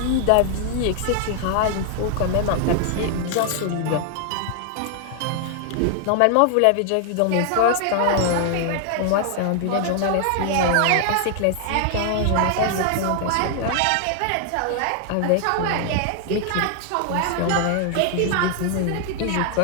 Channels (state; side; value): different; both; correlation 0.00